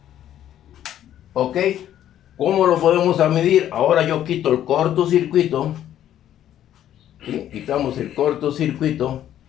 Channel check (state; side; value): quieter; right; 11.3 dB